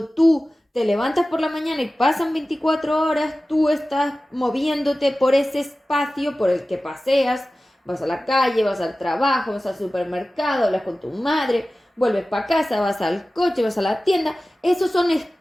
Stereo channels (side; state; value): both; normal; correlation 0.96